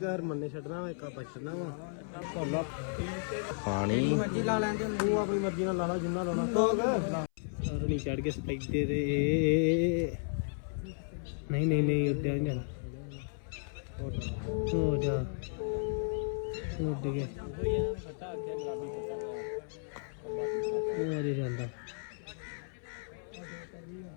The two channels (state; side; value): silent; right; 55 dB below the other